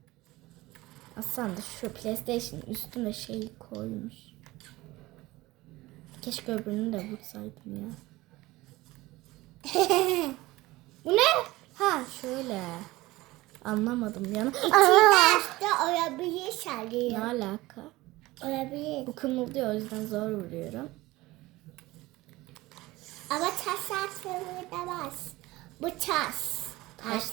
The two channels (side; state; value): left; quieter; 19.3 dB